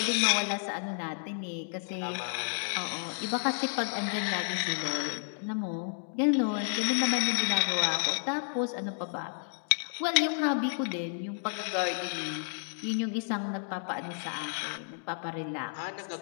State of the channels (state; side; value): silent; right; digital silence